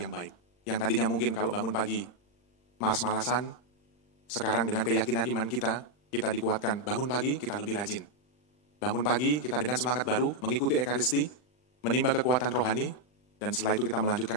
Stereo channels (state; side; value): late; right; 40 ms